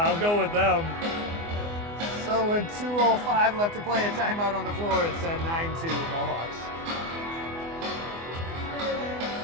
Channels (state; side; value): late; left; 24 ms